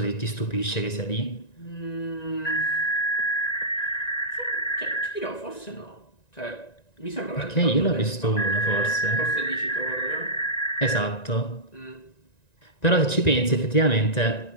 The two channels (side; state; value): right; late; 1.9 ms